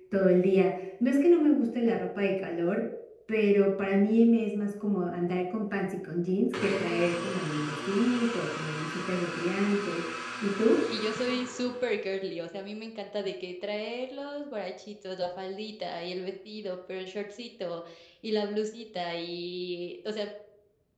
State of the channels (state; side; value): identical; both; correlation 1.00